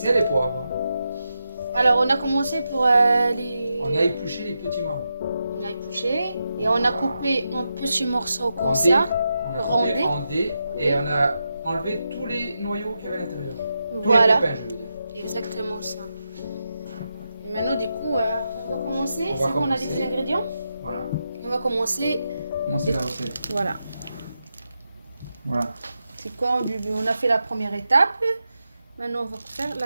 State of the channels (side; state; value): both; inverted; correlation -0.87